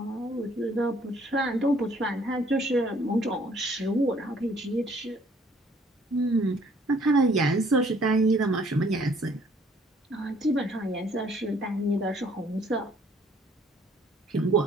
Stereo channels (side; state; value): both; normal; correlation 0.60